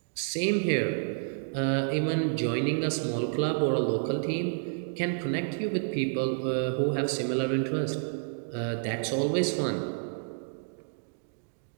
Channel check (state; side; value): silent; left; digital silence